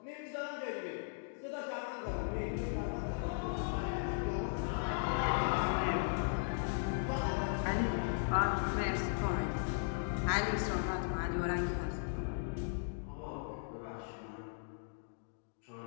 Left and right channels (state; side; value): silent; right; digital silence